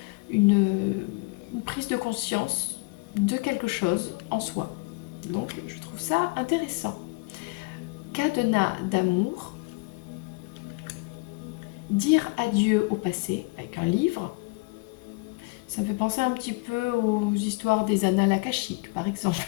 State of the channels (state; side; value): quieter; right; 26.6 dB